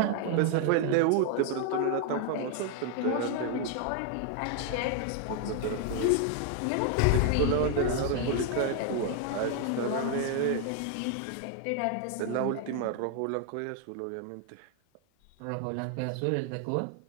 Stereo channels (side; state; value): both; different; correlation 0.00